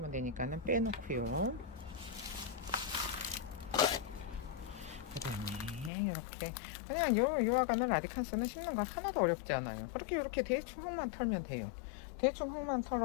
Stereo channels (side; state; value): right; drops out; at 5.9 s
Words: 되니까는 빼놓고요. 그 다음에 이렇게 그냥 요 아가는 라디칸스는 심는 거 하나도 어렵지 않아요. 그렇게 이렇게 대충 흙만 털면 돼요. 대충 흙만